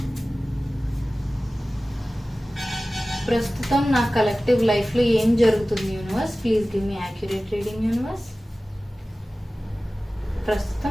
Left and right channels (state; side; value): normal; both; correlation 0.97